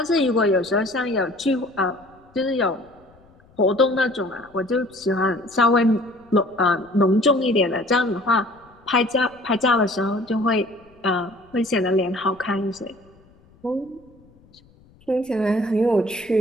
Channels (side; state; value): left; noise; rumble, 29 dB below the sound